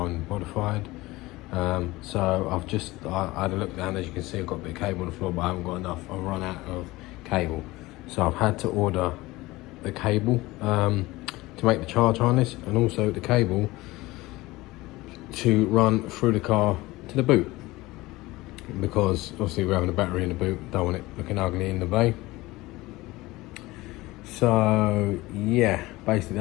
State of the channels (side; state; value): right; quieter; 19.8 dB